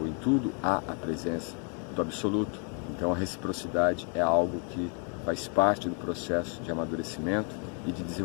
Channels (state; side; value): quieter; right; 39.3 dB